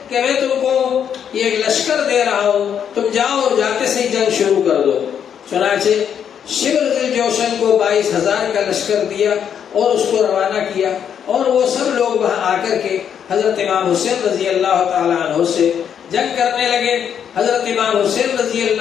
کہ میں تم کو یہ ایک لشکر دے رہا ہوں، تم جاؤ اور جاتے سے ہی جنگ شروع کر دو۔ چنانچہ شمر جوشن کو 22,000 کا لشکر دیا اور اس کو روانہ کیا، اور وہ سب لوگ وہاں آ کر کے حضرت امام حسین رضی اللہ تعالیٰ عنہ سے جنگ کرنے لگے۔ حضرت امام حسین رضی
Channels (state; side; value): quieter; right; 8.4 dB